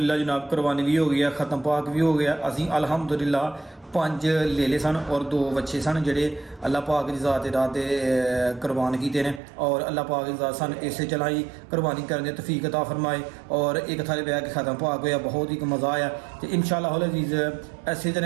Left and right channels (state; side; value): drops out; left; at 9.4 s